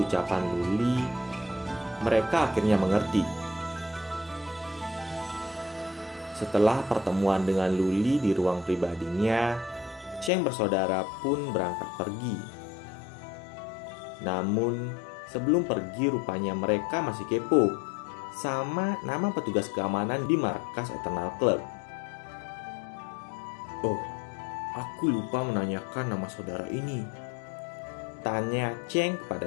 ucapan Luli, mereka akhirnya mengerti. Setelah pertemuan dengan Luli di ruang pribadinya, Cheng bersaudara pun berangkat pergi. Namun, sebelum pergi rupanya mereka masih kepo sama nama petugas keamanan di markas Eternal Club. Oh, aku lupa menanyakan nama saudara ini, tanya Cheng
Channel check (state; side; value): drops out; right; at 10.3 s